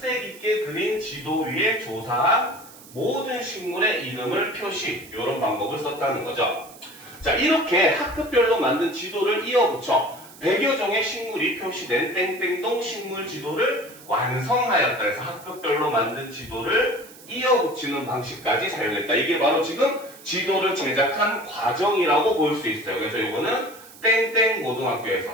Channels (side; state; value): right; noise; hiss, 20 dB below the sound